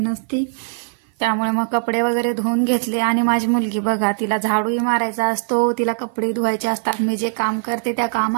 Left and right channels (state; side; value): silent; left; 56 dB below the other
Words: त्यामुळे मग कपडे वगैरे धुवून घेतले. आणि माझी मुलगी बघा, तिला झाडूही मारायचा असतो, तिला कपडे धुवायचे असतात. मी जे काम करते त्या